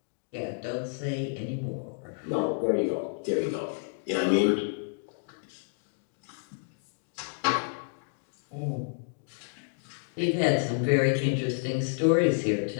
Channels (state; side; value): silent; right; digital silence